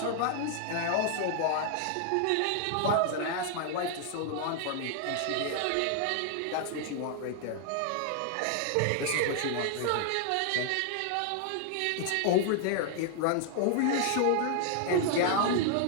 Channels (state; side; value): different; both; correlation 0.00